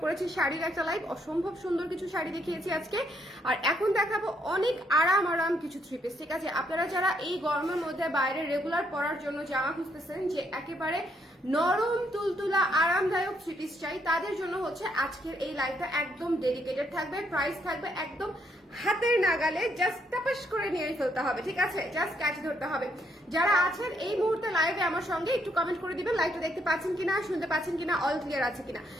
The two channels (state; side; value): normal; both; correlation 0.73